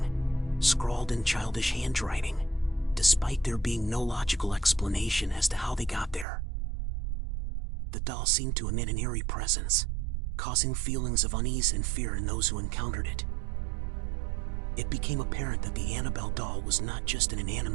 scrawled in childish handwriting, despite there being no logical explanation as to how they got there. The doll seemed to emit an eerie presence, causing feelings of unease and fear in those who encountered it. It became apparent that the Annabelle doll was not just an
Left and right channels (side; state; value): left; drops out; at 6.2 s